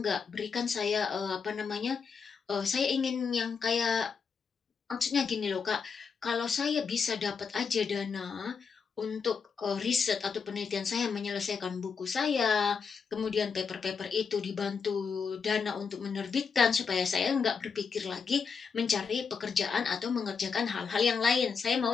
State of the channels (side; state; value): right; quieter; 5.8 dB